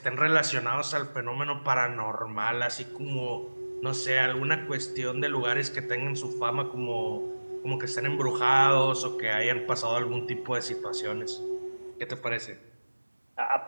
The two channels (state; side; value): inverted; both; correlation -1.00